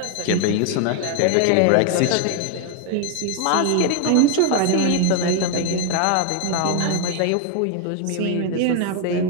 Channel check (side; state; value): both; different; correlation 0.00